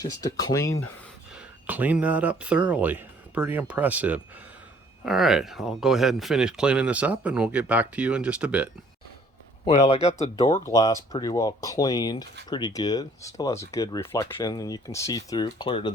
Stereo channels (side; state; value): both; normal; correlation 0.59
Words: to clean that up thoroughly. Pretty impressive. All right, I'll go ahead and finish cleaning this up and we'll get back to you in just a bit. Well, I got the door glass pretty well cleaned, pretty good. Still has a good reflection, and you can see through clear to